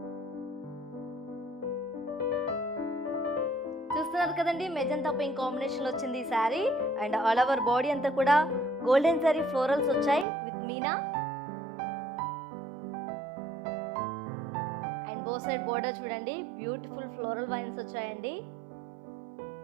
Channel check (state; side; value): drops out; left; at 10.2 s